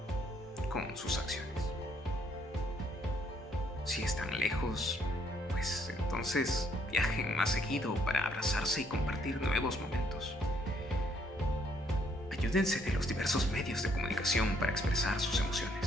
con sus acciones. Si están lejos, pues entonces viajen más seguido para abrazarse y compartir nuevos momentos. Ayúdense de los diversos medios de comunicación para expresar sus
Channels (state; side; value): normal; both; correlation 0.68